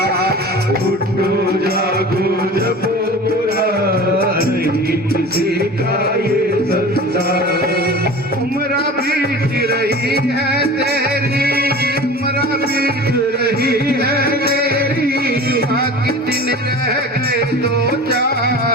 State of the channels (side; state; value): both; normal; correlation 0.37